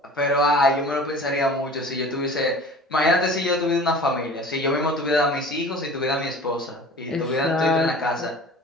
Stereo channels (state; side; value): normal; both; correlation 0.42